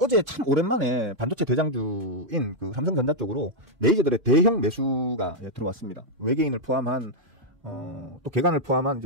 참 오랜만에 반도체 대장주인 그 삼성전자 쪽으로 메이저들의 대형 매수가 들어왔습니다. 외계인을 포함한 또 개간을 포함한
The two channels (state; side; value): late; left; 2.5 ms